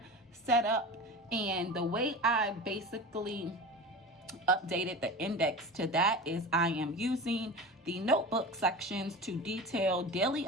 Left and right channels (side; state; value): both; normal; correlation 0.31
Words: set up. And the way I basically updated the index to that is I am using the notebook sections to detail daily